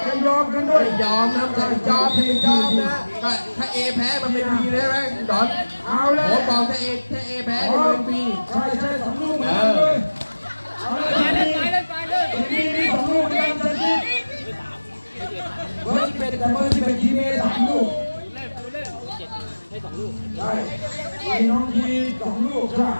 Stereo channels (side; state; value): both; inverted; correlation -1.00